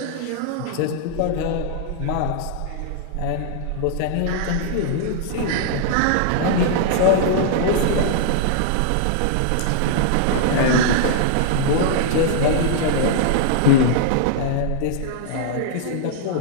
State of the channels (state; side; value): different; both; correlation -0.01